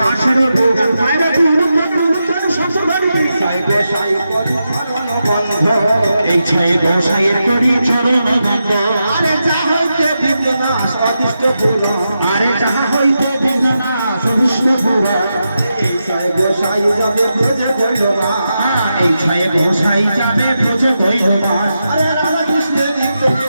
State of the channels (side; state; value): both; inverted; correlation -0.88